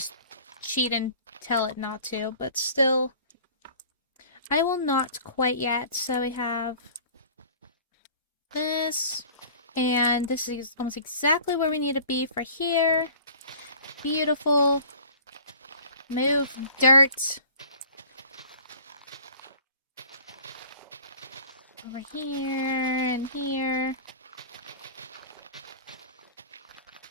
cheat and tell it not to, but still, I will not quite yet. So we have this, and this is almost exactly where we need to be for here. Beautiful. Move dirt. Over here and here.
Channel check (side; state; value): both; inverted; correlation -0.47